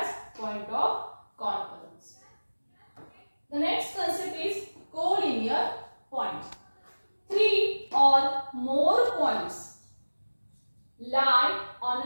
point of concurrence. The next concept is collinear points. 3 or more points lie on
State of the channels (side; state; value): both; inverted; correlation -1.00